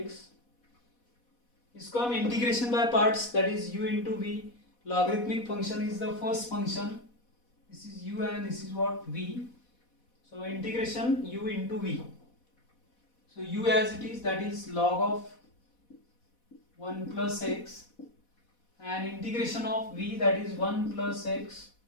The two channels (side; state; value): right; late; 4.1 ms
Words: इसको हम integration by parts, that is u into v. Logarithmic function is the first function. This is u and this is what? V. So integration u into v. So u as it is, that is log of 1 plus x, and integration of v, that is 1 plus x